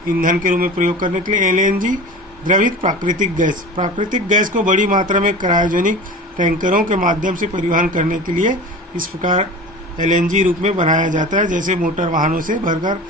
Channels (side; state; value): both; normal; correlation 0.35